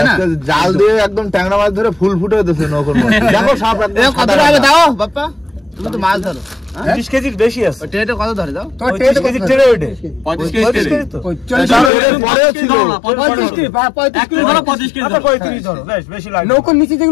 না জাল দিয়ে একদম ট্যাংরা মাছ ধরে ফুল ফুটে দিতেছে নৌকোর মধ্যে দেখো সাপ এ কত হবে দাও বাপ্পা তুমি তো মাছ ধরো 20 কেজির বেশি আছে ওই ট্রেটা কত ধরে দাও 30 কেজি ট্রে ওইটে 35 কেজি তো পরে ছিল 35 কেজি 35 কেজি আচ্ছা 35 ধরো বেশ বেশি লাগে নৌকার নিচে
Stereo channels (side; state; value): right; drops out; at 11.9 s